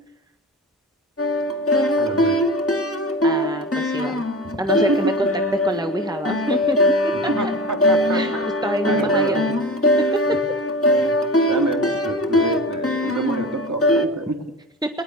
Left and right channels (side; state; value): both; normal; correlation 0.31